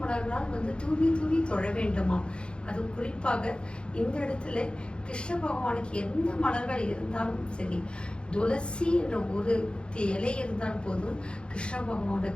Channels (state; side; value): late; right; 0.055 ms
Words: மலர்களால் வந்து தூவி தொழ வேண்டுமா. அது குறிப்பாக இந்த இடத்துல கிருஷ்ண பகவானுக்கு எந்த மலர்கள் இருந்தாலும் சரி, துளசி என்ற ஒரு இலை இருந்தால் போதும் கிருஷ்ண